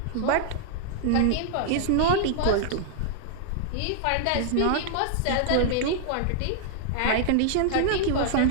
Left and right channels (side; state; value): both; different; correlation -0.01